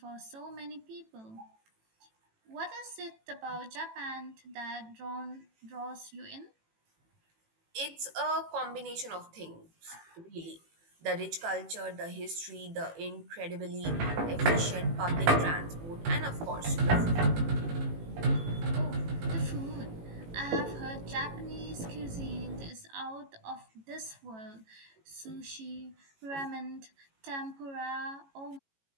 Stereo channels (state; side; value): late; left; 18 ms